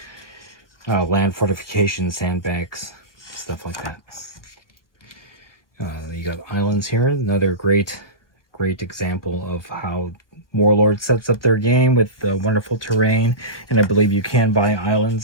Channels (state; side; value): late; right; 1.0 ms